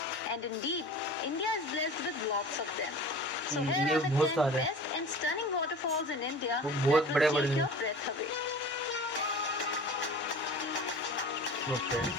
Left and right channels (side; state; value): both; normal; correlation 0.38